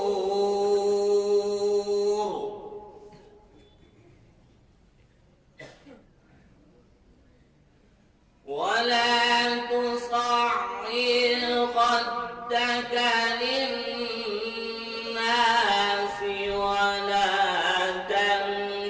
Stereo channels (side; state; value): both; identical; correlation 1.00